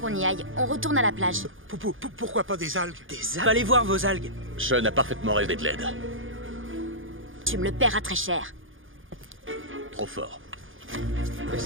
y aille. On retourne à la plage. Pourquoi pas des algues? Des algues? Allez voir vos algues. Sean a parfaitement rêvé de l'aide. Tu me le paieras très cher. Trop fort. Mais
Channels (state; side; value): late; left; 0.58 ms